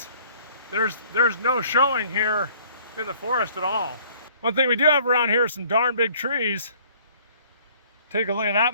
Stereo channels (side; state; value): both; inverted; correlation -0.56